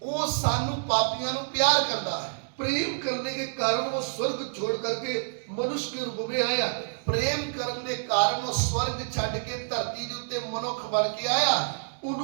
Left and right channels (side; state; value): left; silent; digital silence